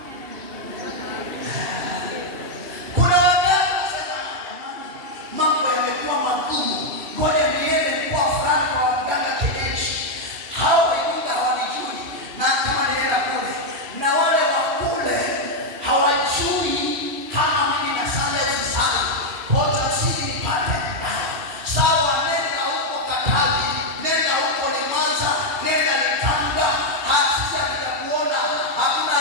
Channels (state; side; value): late; left; 2.7 ms